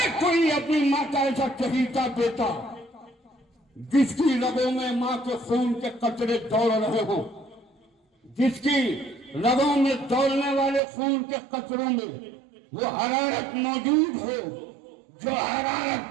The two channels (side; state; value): left; drops out; at 10.8 s